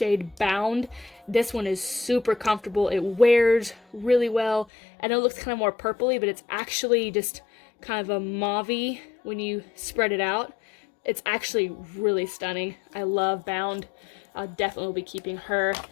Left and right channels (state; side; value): drops out; right; at 4.7 s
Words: Bound. This one is super comfortable. It wears really well. I know it looks kind of more purpley, but it's actually just kind of a mauve-y when you spread it out. It's actually really stunning. I love Bound. I'll definitely be keeping her.